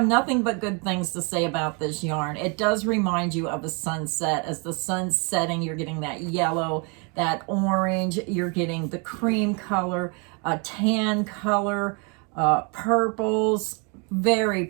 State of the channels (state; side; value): quieter; left; 33.9 dB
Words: nothing but good things to say about this yarn. It does remind you of a sunset. As the sun's setting, you're getting that yellow, that orange, you're getting the cream color, a tan color, purples. Very